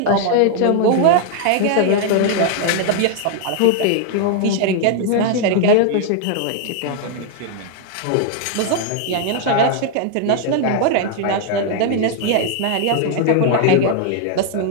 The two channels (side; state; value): both; different; correlation 0.00